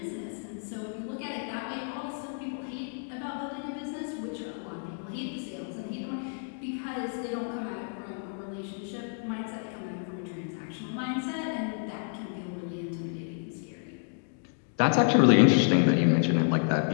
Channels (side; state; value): right; silent; 58 dB below the other